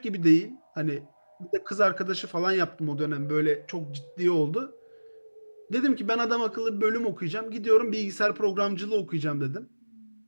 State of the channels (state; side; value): inverted; both; correlation -1.00